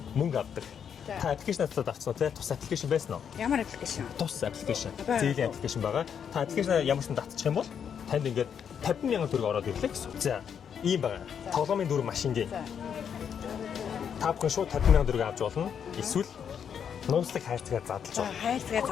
мөнгө авдаг. Та аппликейшн татаад авсан уу те? Тус аппликейшн байсан уу? Ямар аппликейшн? Тус аппликейшн. Зээлийн аппликейшн байгаа. Та аппликейшн ямар ч татчих юм бол танд ингээд 50,000 төгрөг ороод ирлээ гэсэн. За ийм байгаа. Тоглоомын дүр машингийн. Та бүхэн шууд 50,000 төгрөг авч болно. Эсвэл нууцлаг хайрцагаар задлж болно.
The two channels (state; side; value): quieter; right; 7.8 dB